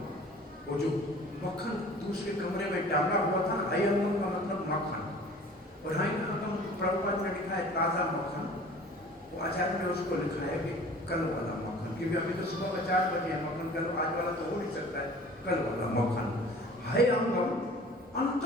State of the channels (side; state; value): both; normal; correlation 0.46